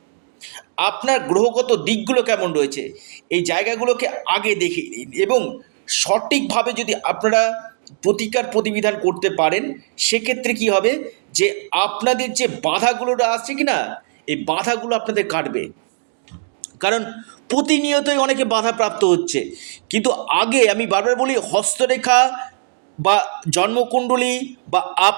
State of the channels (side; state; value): left; silent; digital silence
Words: আপনার গ্রহগত দিকগুলো কেমন রয়েছে, এই জায়গাগুলোকে আগে দেখে নিন। এবং সঠিকভাবে যদি আপনারা প্রতিকার প্রতিবিধান করতে পারেন, সেক্ষেত্রে কি হবে যে আপনাদের যে বাধাগুলো আসছে কি না, এই বাধাগুলো আপনাদের কাটবে। কারণ প্রতিনিয়তই অনেকে বাধাপ্রাপ্ত হচ্ছে। কিন্তু আগে আমি বারবার বলি, হস্তরেখা বা জন্মকুণ্ডলী বা